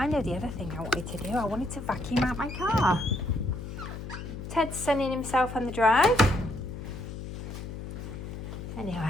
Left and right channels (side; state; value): left; noise; hum, 8 dB below the sound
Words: know the other thing I wanted to do. I wanted to vacuum out my car. Ted's sunning himself on the drive.